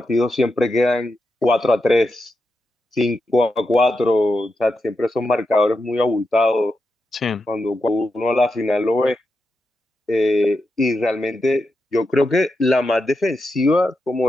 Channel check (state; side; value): normal; both; correlation 0.87